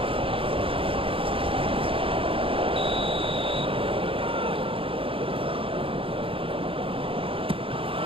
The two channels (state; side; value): late; left; 0.26 ms